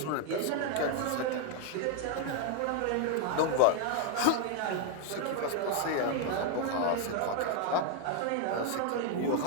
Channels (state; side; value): different; both; correlation 0.00